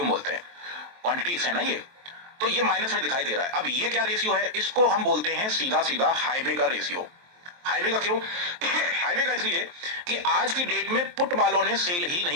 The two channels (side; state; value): left; late; 23 ms